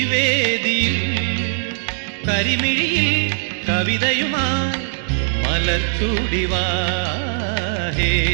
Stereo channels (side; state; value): left; silent; digital silence